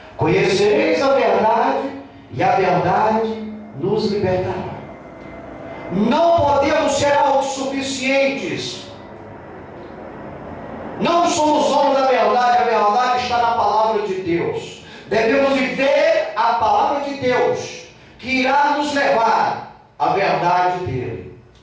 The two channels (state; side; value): identical; both; correlation 1.00